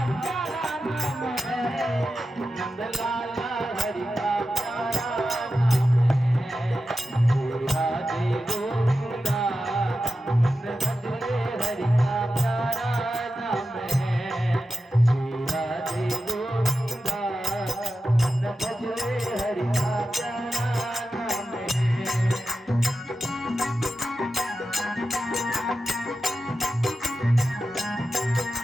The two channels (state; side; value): normal; both; correlation 0.92